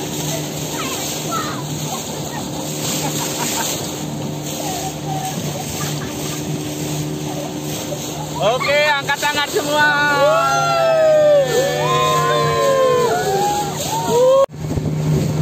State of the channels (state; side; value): identical; both; correlation 1.00